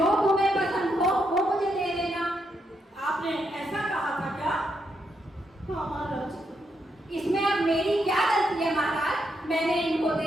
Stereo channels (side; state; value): both; normal; correlation 0.80